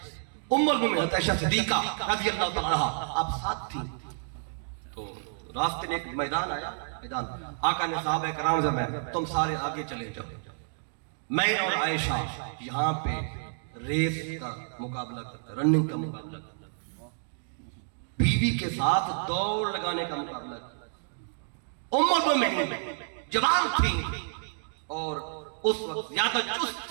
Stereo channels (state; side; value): silent; left; digital silence